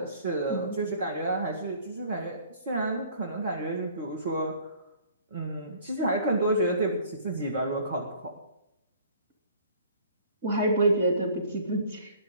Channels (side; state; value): both; inverted; correlation -0.53